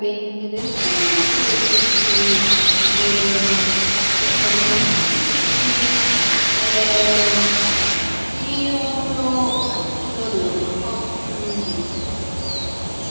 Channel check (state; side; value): inverted; both; correlation -1.00